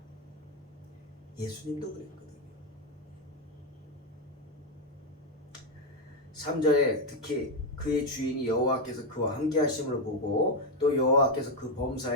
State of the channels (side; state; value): both; normal; correlation 0.05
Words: 예수님도 그랬거든요. 3절에 특히 그의 주인이 여호와께서 그와 함께 하심을 보고 또 여호와께서 그